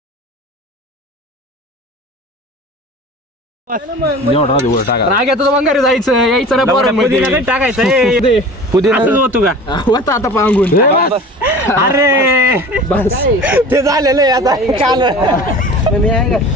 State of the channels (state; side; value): normal; both; correlation 0.39